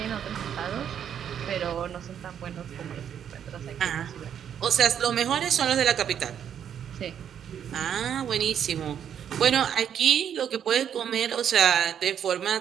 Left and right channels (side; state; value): left; quieter; 8.9 dB